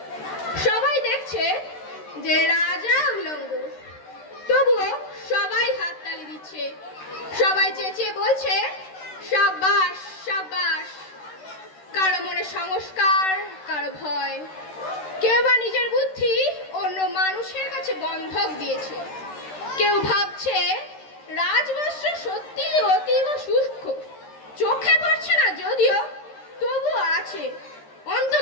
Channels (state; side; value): late; right; 13 ms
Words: সবাই দেখছে যে রাজা উলঙ্গ, তবুও সবাই হাততালি দিচ্ছে, সবাই চেঁচিয়ে বলছে সাব্বাস সাব্বাস। কারো মনে সংস্কার, কারো ভয়, কেউ বা নিজের বুদ্ধি অন্য মানুষের কাছে বন্ধক দিয়েছে। কেউ ভাবছে রাজবস্ত্র সত্যি অতীব সূক্ষ্ম, চোখে পড়ছে না যদিও, তবুও আছে,